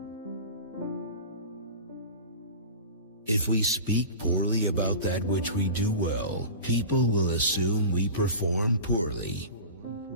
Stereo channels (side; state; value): both; inverted; correlation -0.33